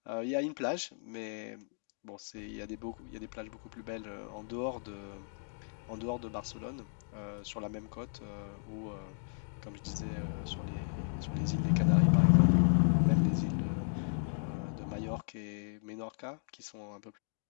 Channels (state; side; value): silent; right; digital silence